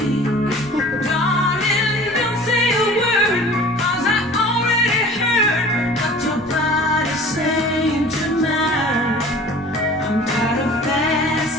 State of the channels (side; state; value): both; normal; correlation 0.44